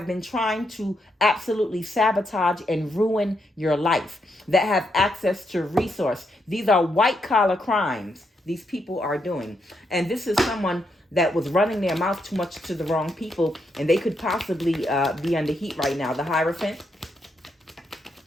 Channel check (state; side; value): normal; both; correlation 0.80